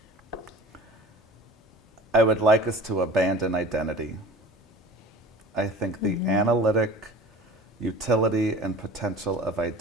I would like us to abandon identity. I think the analytic utility and potential of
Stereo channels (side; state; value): both; normal; correlation 0.41